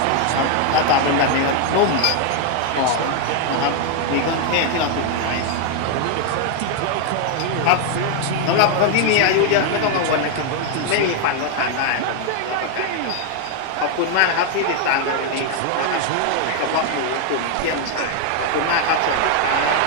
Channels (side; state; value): both; different; correlation 0.00